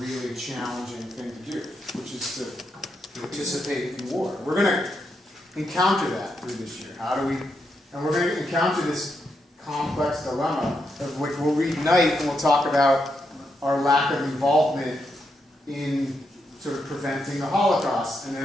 challenging thing to do, which is to participate in war. We're going to encounter that through this year. And we're going to encounter this complex dilemma of which we'll read Night and we'll talk about our lack of involvement in sort of preventing the Holocaust, and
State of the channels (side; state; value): both; normal; correlation 0.82